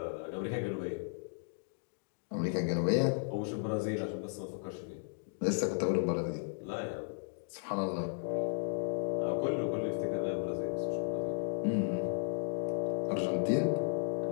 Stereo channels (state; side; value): silent; right; digital silence